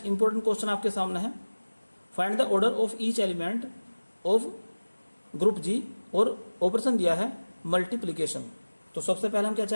इंपॉर्टेंट क्वेश्चन आपके सामने है, find the order of each element of group G, और ऑपरेशन दिया है मल्टीप्लिकेशन। तो सबसे पहले हम क्या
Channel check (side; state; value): both; inverted; correlation -1.00